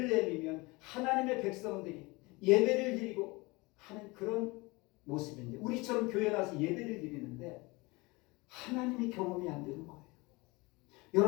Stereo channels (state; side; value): quieter; right; 24.4 dB